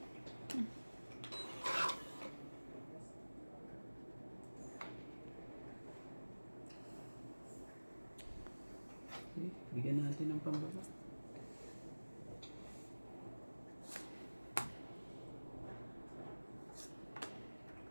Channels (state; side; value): inverted; both; correlation -1.00